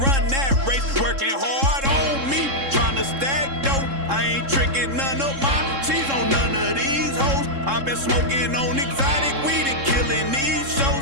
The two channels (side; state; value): left; late; 3.7 ms